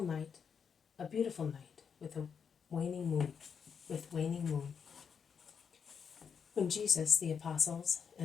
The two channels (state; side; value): quieter; right; 6.7 dB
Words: night, a beautiful night, with waning moon. When Jesus, the apostles,